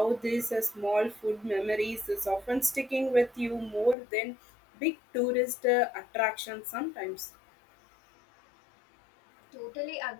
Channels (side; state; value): right; drops out; at 4.0 s